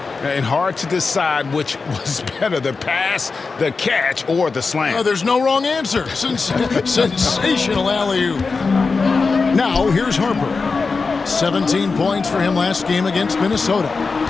And hard to decide which was better, the pass, the catch, or the slam. Oh, there's no wrong answer. Sensational alley-oop. Now, here's Harper. 17 points for him last game against Minnesota.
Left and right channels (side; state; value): right; quieter; 4.4 dB